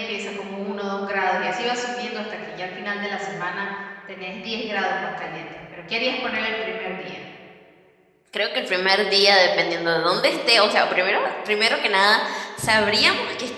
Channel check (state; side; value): identical; both; correlation 1.00